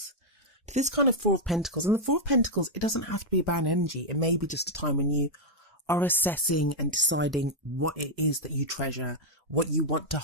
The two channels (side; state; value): both; normal; correlation -0.03